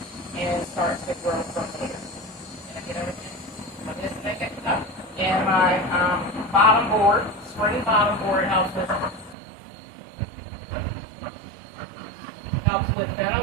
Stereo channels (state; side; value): drops out; left; at 9.3 s